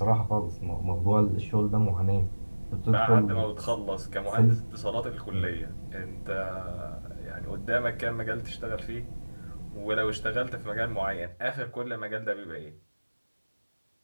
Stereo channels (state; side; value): inverted; both; correlation -1.00